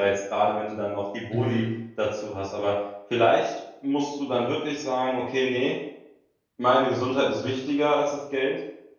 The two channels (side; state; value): both; identical; correlation 1.00